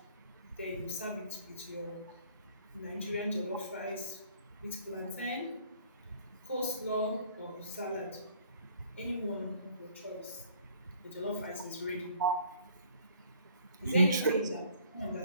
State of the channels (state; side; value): inverted; both; correlation -0.57